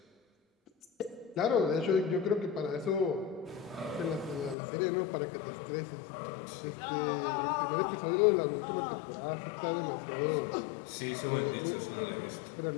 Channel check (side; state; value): right; drops out; at 4.5 s